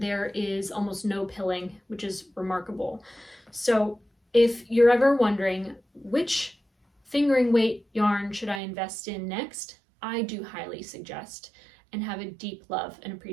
there is almost no pilling, which is remarkable. So if you're ever wondering which fingering weight yarn should I invest in next, I do highly suggest and have a deep love and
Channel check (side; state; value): left; drops out; at 8.6 s